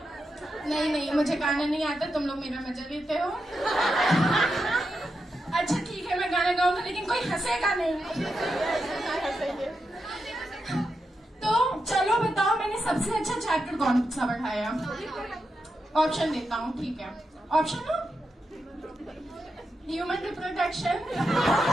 नहीं नहीं, मुझे गाना नहीं आता, तुम लोग मेरा मजा लेते हो। अच्छा ठीक है, मैं गाना गाऊंगा लेकिन कोई हंसेगा नहीं। तो चलो बताओ, मैंने सबसे अच्छा चैप्टर कौन सा पढ़ाया? ऑप्शन देता हूँ, ठीक है? ऑप्शन हो, human reproduction,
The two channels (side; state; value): both; normal; correlation 0.87